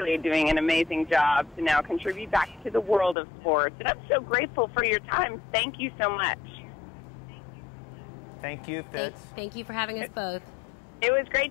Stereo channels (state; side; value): drops out; right; at 3.2 s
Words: doing an amazing job to now contribute back to the world of sports. And I'm so grateful for your time. Thank you so much. Thank you, Fitz. Thank you for having us both. It was